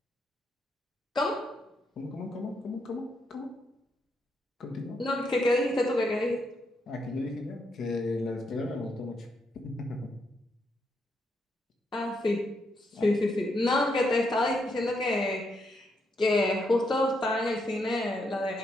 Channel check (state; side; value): normal; both; correlation 0.79